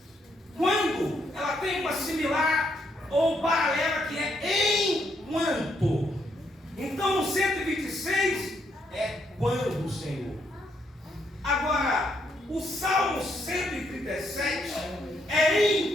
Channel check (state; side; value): normal; both; correlation 0.75